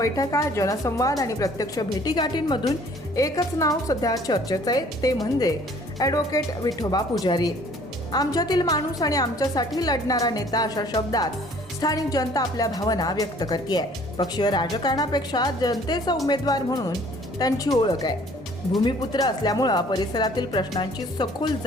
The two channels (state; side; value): normal; both; correlation 0.55